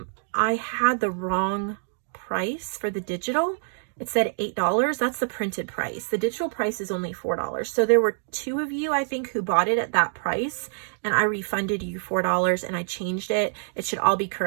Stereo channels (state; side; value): silent; left; digital silence